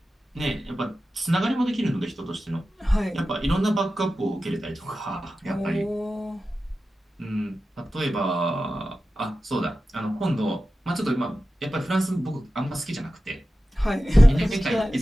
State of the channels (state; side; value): normal; both; correlation 0.94